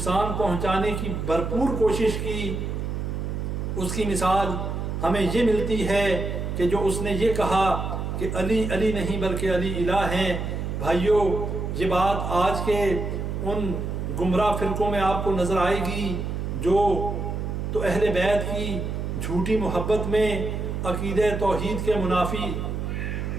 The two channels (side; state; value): right; noise; hum, 3 dB below the sound